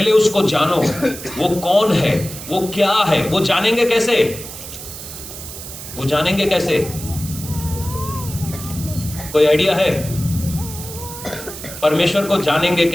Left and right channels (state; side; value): noise; right; hiss, 11 dB below the sound